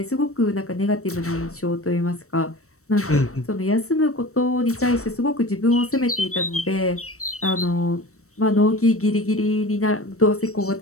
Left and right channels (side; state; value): right; late; 0.64 ms